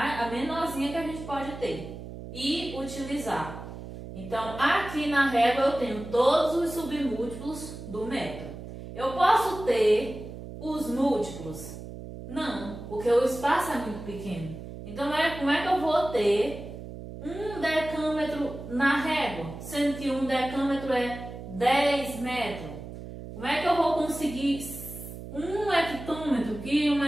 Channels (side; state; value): right; noise; hum, 11 dB below the sound